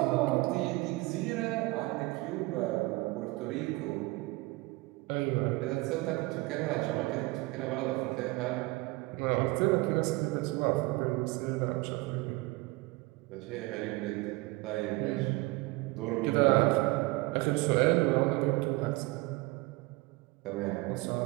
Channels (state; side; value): quieter; left; 22.5 dB